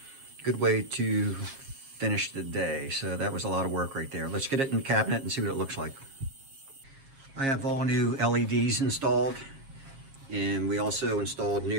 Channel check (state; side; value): late; left; 7.4 ms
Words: way to finish the day. So that was a lot of work right there. Let's get it in the cabinet and see what it looks like. I have all new LEDs installed, and we also installed